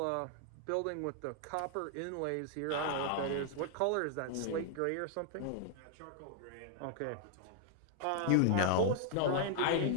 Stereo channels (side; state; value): both; different; correlation 0.00